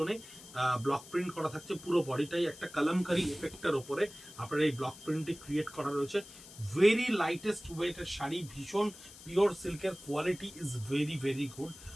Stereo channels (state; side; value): noise; left; hiss, 18 dB below the sound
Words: ব্লক প্রিন্ট করা থাকছে। পুরো বডিটাই একটা কালামকারি এফেক্টের ওপরে আপনার এই ব্লক প্রিন্টটি ক্রিয়েট করা রয়েছে। ভেরি লাইটেস্ট ওয়েটের শাড়ি, ভীষণ পিওর সিল্কের quality is very very good,